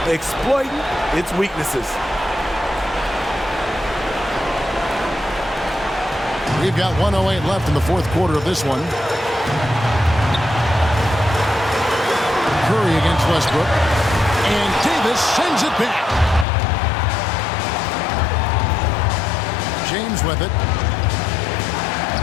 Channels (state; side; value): drops out; right; at 16.4 s